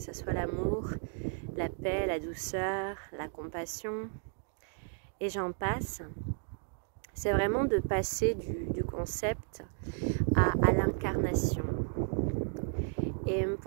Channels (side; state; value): left; silent; 55 dB below the other